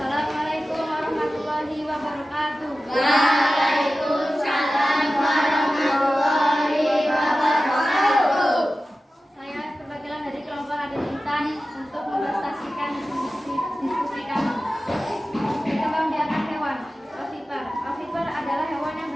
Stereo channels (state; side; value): normal; both; correlation 0.95